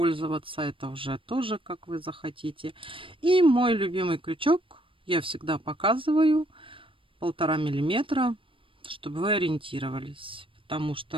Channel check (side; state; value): left; late; 0.25 ms